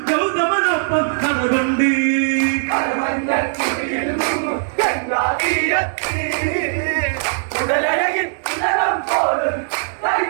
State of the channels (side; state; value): left; silent; digital silence